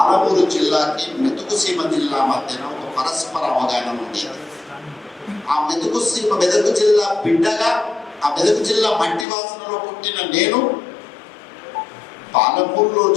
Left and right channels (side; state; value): right; drops out; at 9.2 s